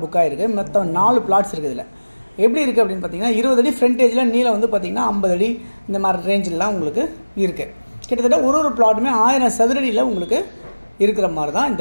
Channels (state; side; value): inverted; both; correlation -1.00